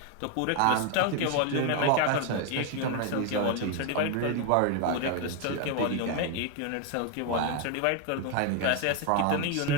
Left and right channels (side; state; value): both; different; correlation 0.01